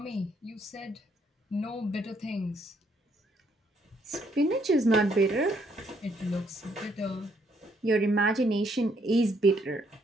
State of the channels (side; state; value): both; normal; correlation 0.70